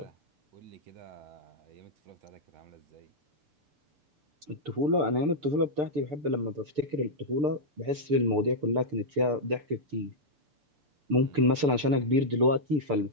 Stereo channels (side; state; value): left; late; 6.8 ms